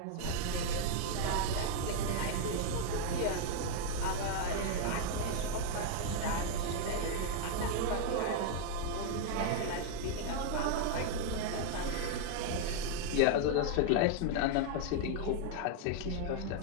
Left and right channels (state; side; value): different; both; correlation 0.00